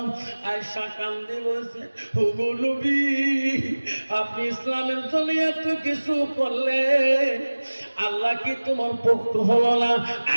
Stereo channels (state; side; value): inverted; both; correlation -1.00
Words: আয়েশা কান্দি বলছে, ওগো নবী আপনি ইসলামের জন্য এত কিছু করলেন, আল্লাহ কি তোমার পক্ষ হলো না?